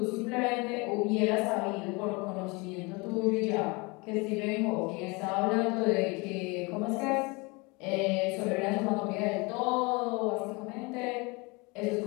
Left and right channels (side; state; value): right; quieter; 27.3 dB